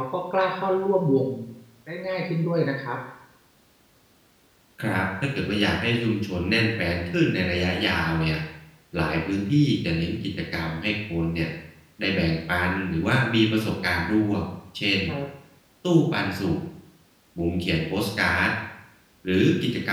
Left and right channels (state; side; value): identical; both; correlation 1.00